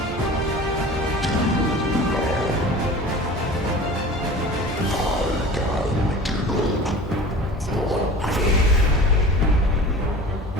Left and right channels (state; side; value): normal; both; correlation 0.39